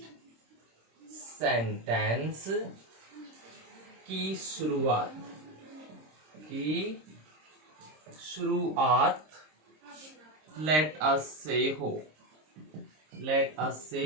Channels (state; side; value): late; left; 26 ms